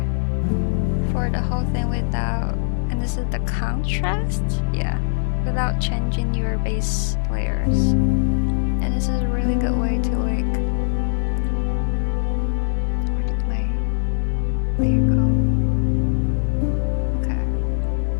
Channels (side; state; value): right; silent; digital silence